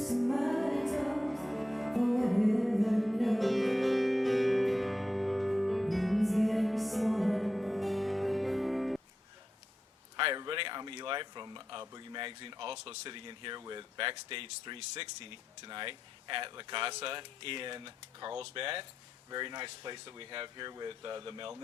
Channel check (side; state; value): both; normal; correlation 0.88